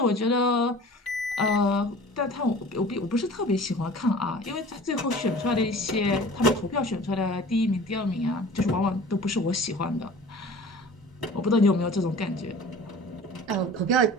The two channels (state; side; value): normal; both; correlation 0.43